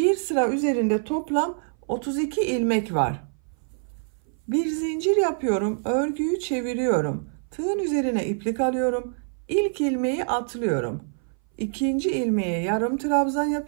sıra üzerinde toplam 32 ilmek var. Bir zincir yapıyorum, örgüyü çeviriyorum. Tığın üzerine iplik alıyorum. İlk ilmeği atlıyorum. İkinci ilmeğe yarım trabzan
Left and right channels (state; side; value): silent; left; 58 dB below the other